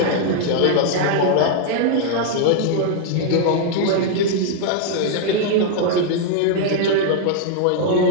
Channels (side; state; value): both; different; correlation 0.00